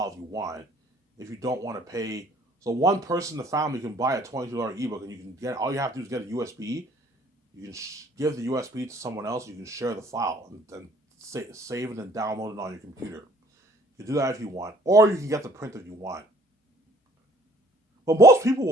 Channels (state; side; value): normal; both; correlation 0.57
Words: if you want, if you don't want to pay. So one person in the family can buy a $22 ebook, and you can get all you have to do is get a USB. You can give the USB to someone else. You can share the file and save it and download it on your computer. You can do that if you want, or you can get the print if you want. But most people